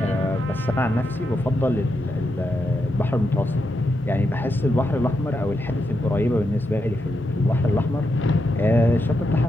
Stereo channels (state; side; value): normal; both; correlation 0.84